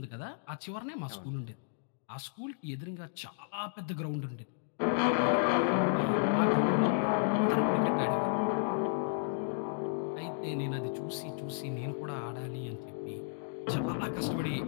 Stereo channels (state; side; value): silent; right; digital silence